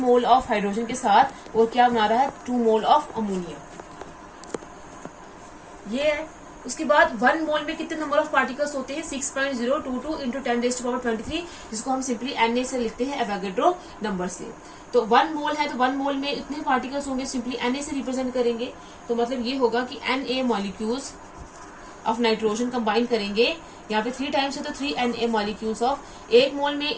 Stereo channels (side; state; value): both; identical; correlation 1.00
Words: ऑफ हाइड्रोजन के साथ, और क्या बना रहा है? 2 मोल ऑफ अमोनिया। ये है। उसके बाद 1 मोल में कितने नंबर ऑफ पार्टिकल्स होते हैं? 6.022 इंटू 10⁻23, जिसको हम सिंपली Na से लिखते हैं, एवोगाड्रो नंबर से। तो 1 मोल है तो 1 मोल में इतने पार्टिकल्स होंगे, सिंपली Na से रिप्रेजेंट करेंगे। तो मतलब ये होगा कि Na molecules of nitrogen combine करेंगे, यहाँ पे 3 टाइम्स है तो 3 Na मॉलिक्यूल्स ऑफ। 1 मोल में